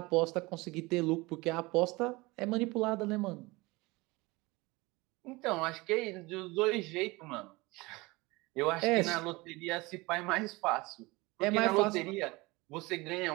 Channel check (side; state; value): left; quieter; 23.0 dB